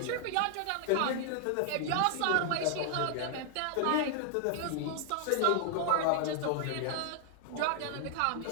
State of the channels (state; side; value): different; both; correlation 0.00